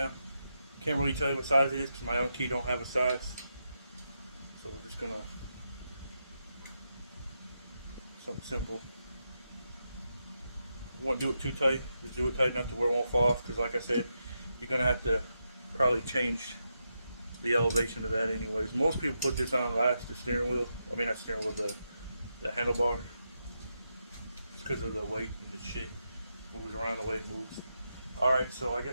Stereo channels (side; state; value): both; inverted; correlation -0.85